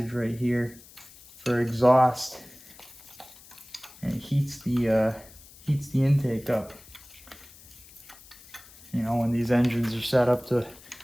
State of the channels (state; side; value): noise; left; hiss, 22 dB below the sound